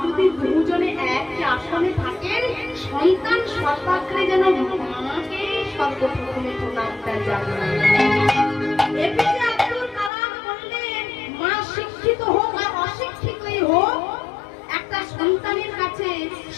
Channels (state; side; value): drops out; right; at 10.1 s